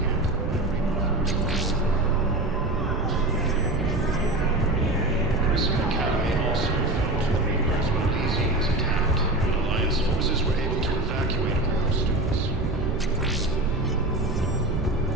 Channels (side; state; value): right; noise; rumble, 2 dB below the sound